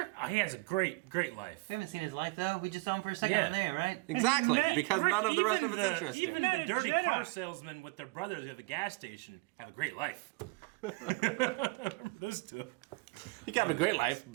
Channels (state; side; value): quieter; left; 25.5 dB